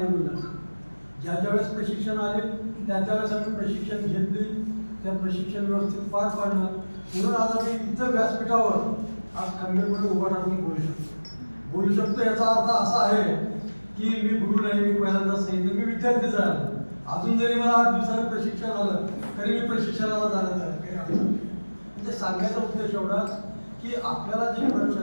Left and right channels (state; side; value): inverted; both; correlation -1.00